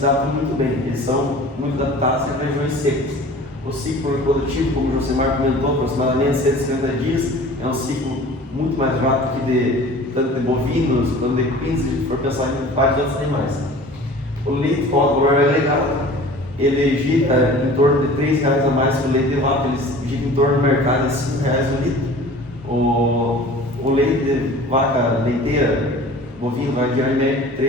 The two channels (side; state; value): both; normal; correlation 0.43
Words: adaptam muito bem, eles são muito adaptados em regiões secas. O ciclo reprodutivo, como o Josemar comentou, aproximadamente 150 dias, é um ciclo muito mais rápido que tanto de bovinos quanto de equinos, se a gente for pensar em vários outros animais. O leite com o valor agregado, ele gira em torno de R$ 3 a mais que o leite de vaca, ele gira em torno do mercado de R$ 5 o litro. O leite de vaca leiteira, bovino, vai girar em média de